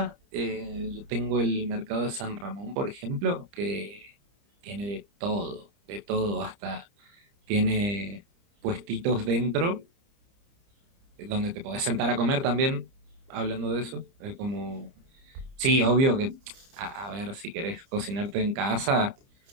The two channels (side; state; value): left; late; 30 ms